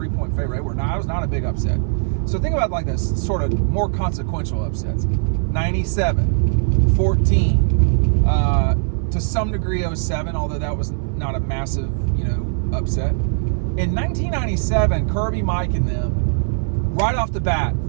point favorite. It was not a big upset. So think about like this sort of more consequential upsets. 97, 14, to some degree 07, although that was not a massive, you know, upset. In 1997, Kirby, Mike, and them, right off the bat,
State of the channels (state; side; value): silent; left; 65 dB below the other